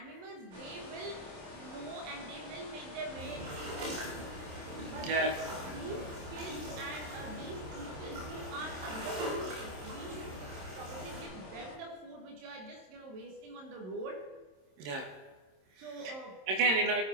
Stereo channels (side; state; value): left; late; 27 ms